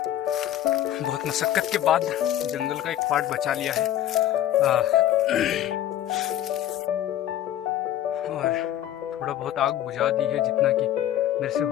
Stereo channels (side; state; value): right; quieter; 12.1 dB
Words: मशक्कत के बाद जंगल का एक पार्ट बचा लिया है और थोड़ा बहुत आग बुझा दी है जितना कि मेरे से